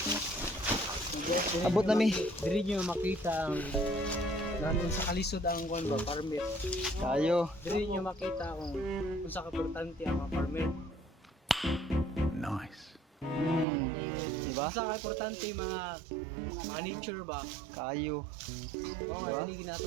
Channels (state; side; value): drops out; left; at 13.7 s